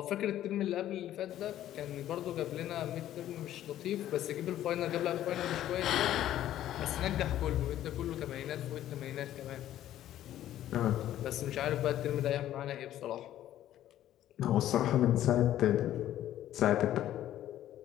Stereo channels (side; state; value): right; quieter; 12.5 dB